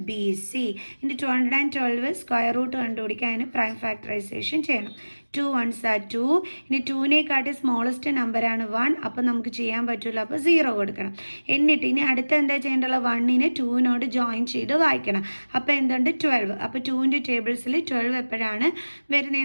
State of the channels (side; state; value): both; inverted; correlation -1.00